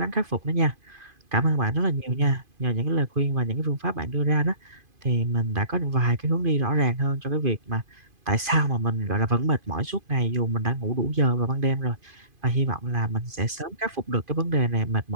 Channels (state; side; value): late; left; 2.5 ms